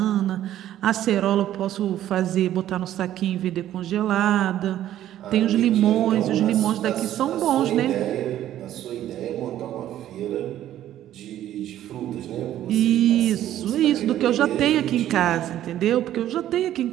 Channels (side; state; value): left; quieter; 12.3 dB